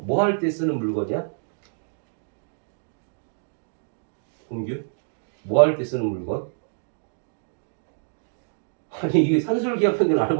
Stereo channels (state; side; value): silent; left; digital silence